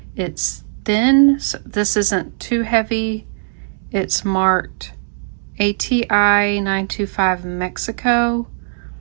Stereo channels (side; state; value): left; silent; digital silence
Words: It's thin, so this isn't too heavy. It's marked ATI 925 Mexico.